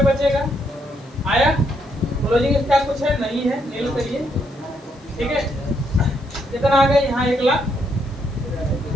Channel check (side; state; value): left; noise; hiss, 29 dB below the sound